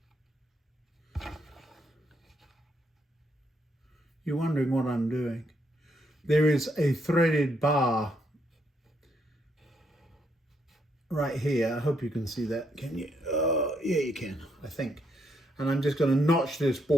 You're wondering what I'm doing. There is a threaded bar right here. I hope you can see that. Can you? Yeah, you can, I think. And I'm just going to notch this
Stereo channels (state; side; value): normal; both; correlation 0.75